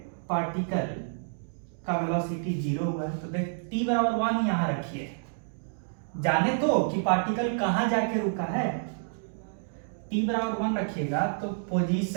पार्टिकल का वेलोसिटी 0 हुआ है, तो देख t बराबर 1 यहां रखिए, जाने तो कि पार्टिकल कहां जाके रुका है। t बराबर 1 रखिएगा तो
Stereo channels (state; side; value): silent; left; digital silence